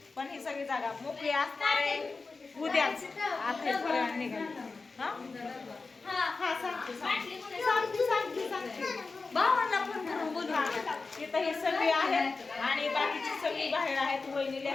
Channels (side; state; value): right; quieter; 4.1 dB